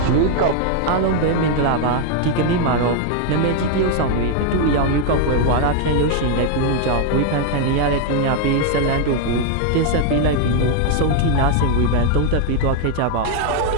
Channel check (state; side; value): different; both; correlation 0.00